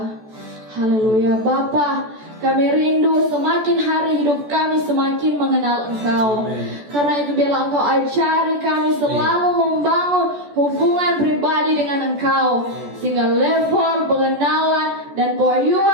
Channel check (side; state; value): left; late; 14 ms